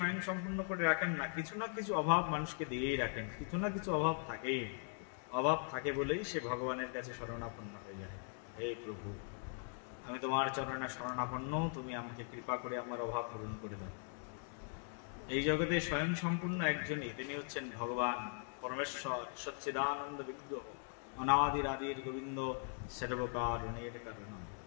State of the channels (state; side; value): silent; right; 51 dB below the other